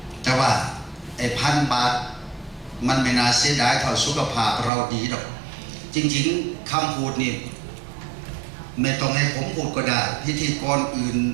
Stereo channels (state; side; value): drops out; left; at 4.7 s